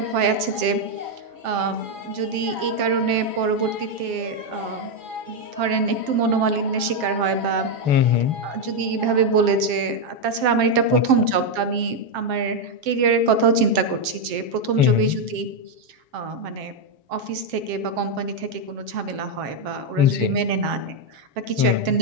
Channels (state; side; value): late; left; 7.5 ms